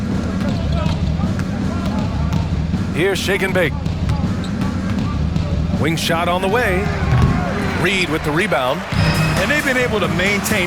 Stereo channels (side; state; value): both; identical; correlation 1.00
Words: Here's shake and bake. Wing shot on the way. Reed with the rebound. And they've been able to